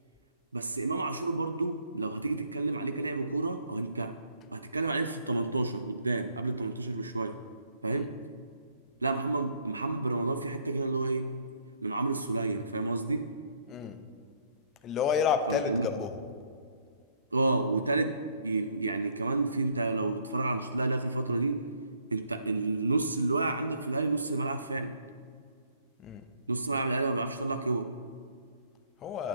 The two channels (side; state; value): both; inverted; correlation -0.66